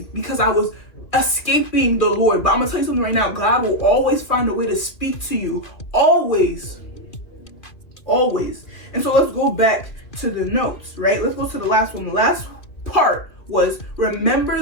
because I was escaping the Lord. But I'm gonna tell you something right now. God will always find a way to speak to you. Always. Always. And so let's go back to the notes, right? Let's go to the last one. The last part was remember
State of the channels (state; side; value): late; right; 2.7 ms